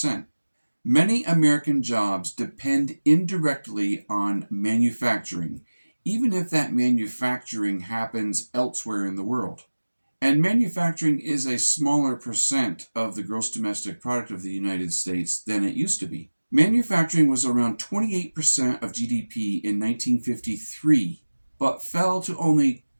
Many American jobs depend indirectly on manufacturing, even if that manufacturing happens elsewhere in the world. And manufacturing is a smaller percent of the gross domestic product of the United States than it used to be. Manufacturing was around 28% of GDP in 1953, but fell to only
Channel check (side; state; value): both; inverted; correlation -1.00